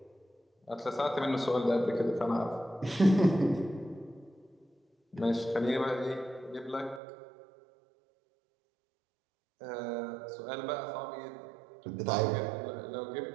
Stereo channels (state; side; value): drops out; left; at 7.0 s